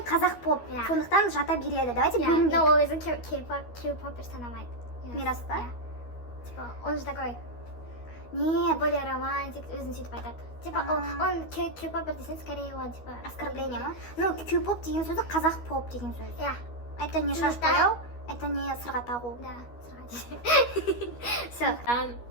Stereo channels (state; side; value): late; right; 12 ms